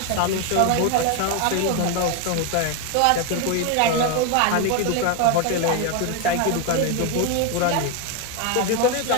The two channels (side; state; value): both; different; correlation 0.01